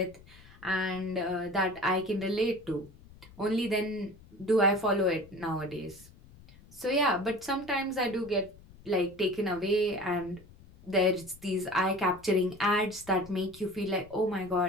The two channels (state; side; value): noise; left; rumble, 23 dB below the sound